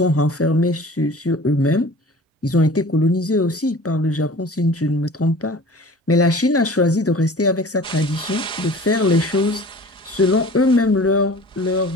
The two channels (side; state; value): both; normal; correlation 0.43